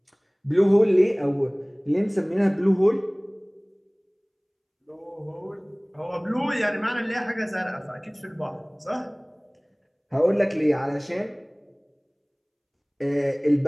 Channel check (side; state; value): both; identical; correlation 1.00